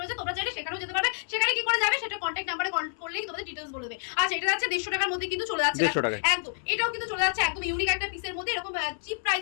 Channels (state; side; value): silent; right; 59 dB below the other